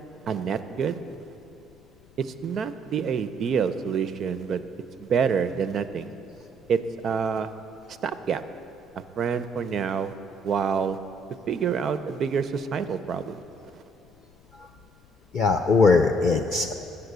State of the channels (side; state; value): left; noise; rumble, 29 dB below the sound